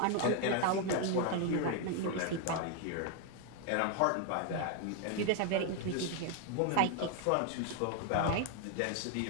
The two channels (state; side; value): different; both; correlation 0.01